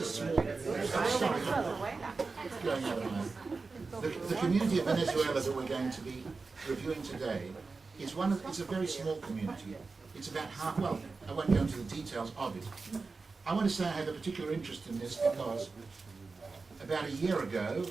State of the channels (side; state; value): left; quieter; 4.2 dB